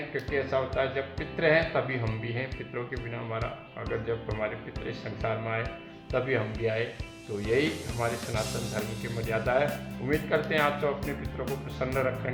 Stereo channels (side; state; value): both; identical; correlation 1.00